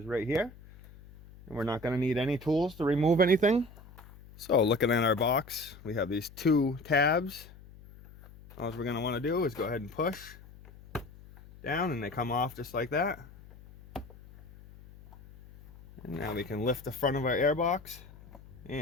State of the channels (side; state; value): left; noise; hum, 20 dB below the sound